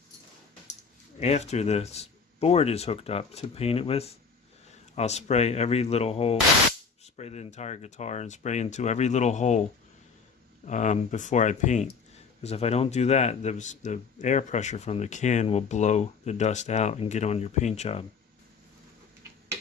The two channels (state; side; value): quieter; right; 5.5 dB